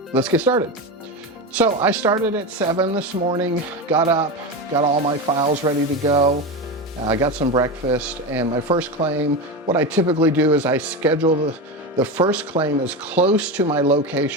let's get started. So I started at 7 this morning, got up, got all my files ready to go. I got some breakfast, and my first claim, what I typically do is I schedule the first claim as close to my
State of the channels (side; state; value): both; normal; correlation 0.19